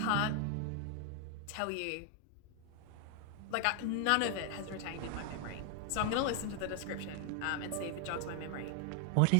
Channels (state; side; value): different; both; correlation 0.00